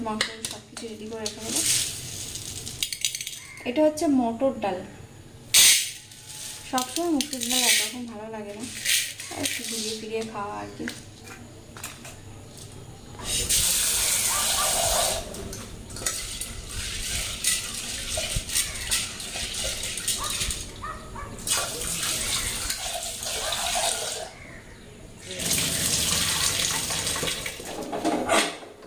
মাংস সব কিছু রেডি করে রেখে দেবো। এটা হচ্ছে মটর ডাল। সবসময় মুসুর ডাল একরকম ভালো লাগে না, একটু ঘুরিয়ে ফিরিয়ে খাওয়া আর কি।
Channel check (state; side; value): identical; both; correlation 1.00